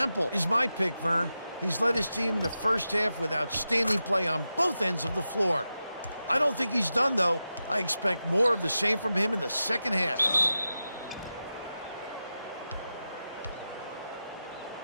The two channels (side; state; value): both; inverted; correlation -0.91